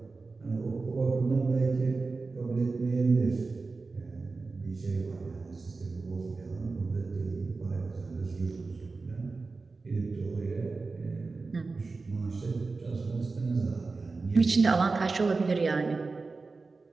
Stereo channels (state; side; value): quieter; left; 4.0 dB